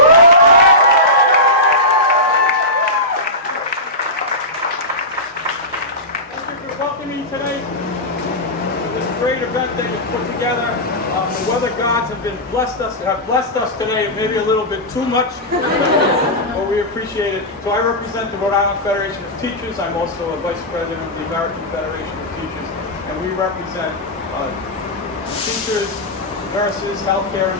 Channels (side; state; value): both; normal; correlation -0.14